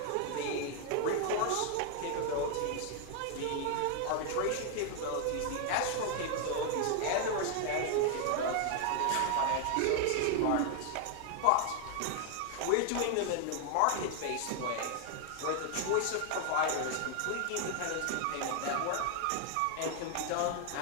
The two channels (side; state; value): both; different; correlation 0.00